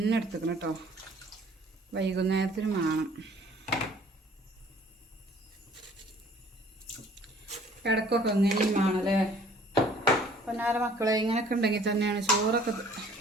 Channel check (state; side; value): normal; both; correlation 0.55